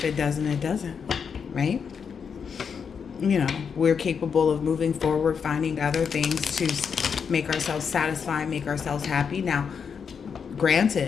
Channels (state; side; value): quieter; right; 6.5 dB